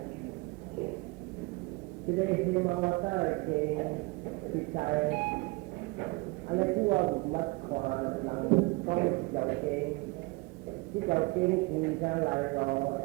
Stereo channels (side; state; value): left; quieter; 25.3 dB